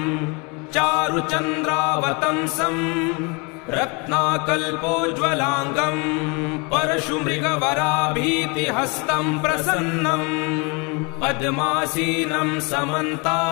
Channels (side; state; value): right; quieter; 30.7 dB